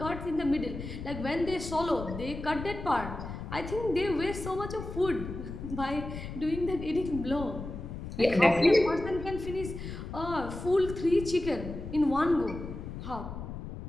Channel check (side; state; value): left; noise; rumble, 8 dB below the sound